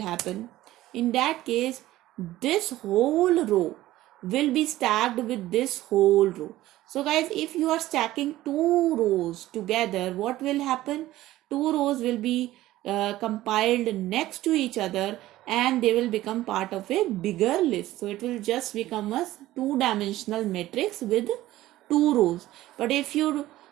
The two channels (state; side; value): quieter; left; 15.6 dB